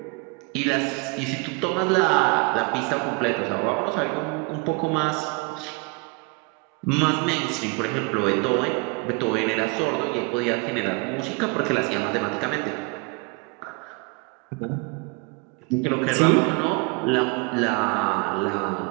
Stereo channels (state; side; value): quieter; left; 29.6 dB